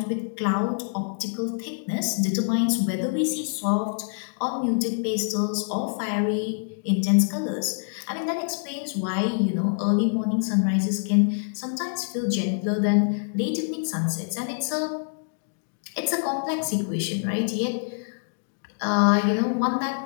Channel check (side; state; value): right; silent; digital silence